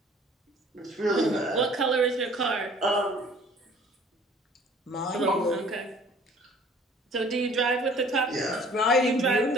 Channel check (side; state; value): both; normal; correlation 0.52